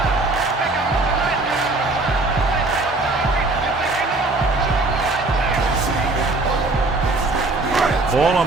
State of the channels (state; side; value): quieter; left; 3.2 dB